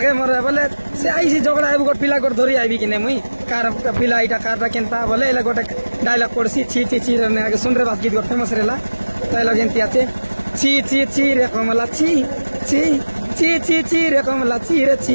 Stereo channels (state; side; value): inverted; both; correlation -1.00